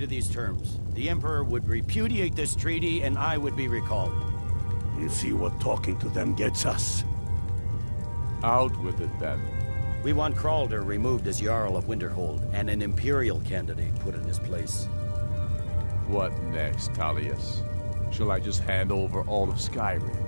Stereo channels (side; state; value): both; inverted; correlation -1.00